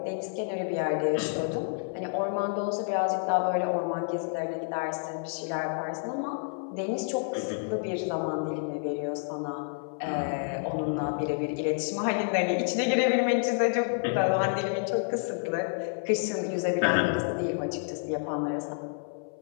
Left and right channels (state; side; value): silent; right; 57 dB below the other